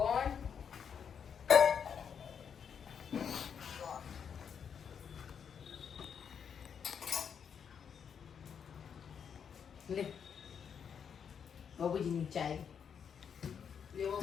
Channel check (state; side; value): quieter; right; 7.3 dB